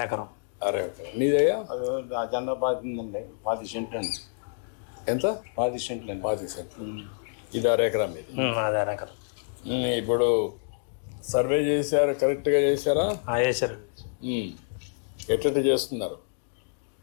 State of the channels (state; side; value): silent; right; digital silence